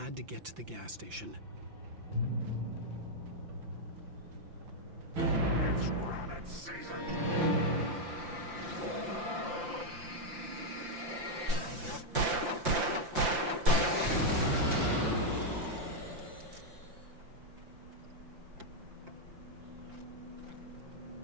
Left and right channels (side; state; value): left; late; 5.8 ms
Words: to get to the gas station. It's rabbit season.